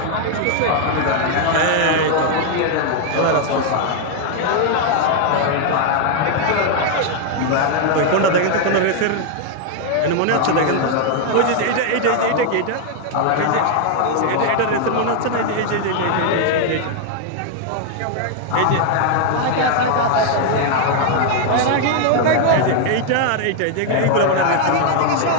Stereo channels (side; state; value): both; different; correlation 0.00